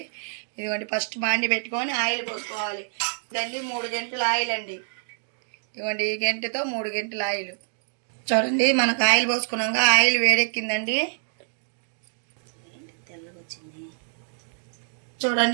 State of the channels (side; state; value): left; silent; digital silence